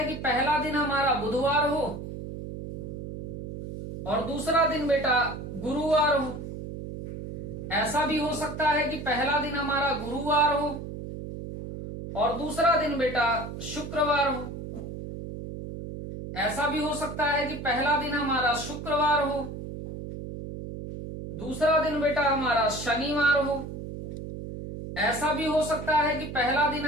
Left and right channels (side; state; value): right; noise; hum, 8 dB below the sound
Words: कि पहला दिन हमारा बुधवार हो और दूसरा दिन बेटा गुरुवार हो। ऐसा भी हो सकता है कि पहला दिन हमारा गुरुवार हो और दूसरा दिन बेटा शुक्रवार हो। ऐसा भी हो सकता है कि पहला दिन हमारा शुक्रवार हो, दूसरा दिन बेटा हमारा शनिवार हो। ऐसा भी हो सकता है कि पहला दिन